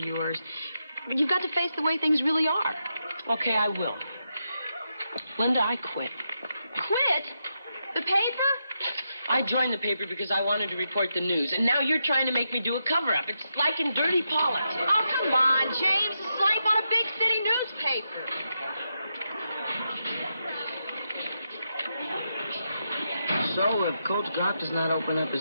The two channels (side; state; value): both; inverted; correlation -0.85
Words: But you've got to face the way things really are. Okay, I will. Linda, I quit. Quit? The paper? I joined the paper because I wanted to report the news, and now you're trying to make me do a cover-up. It's like in dirty politics. Oh, come on, James. It's life on a big city newspaper. So, if Coach Goff does not open up his